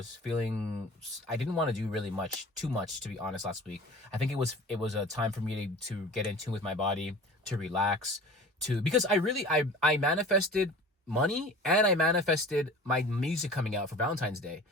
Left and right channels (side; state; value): both; normal; correlation 0.40